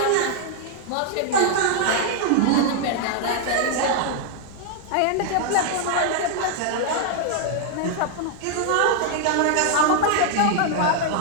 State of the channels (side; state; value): both; different; correlation 0.00